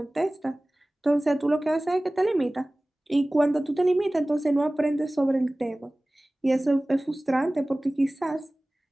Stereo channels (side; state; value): both; normal; correlation 0.98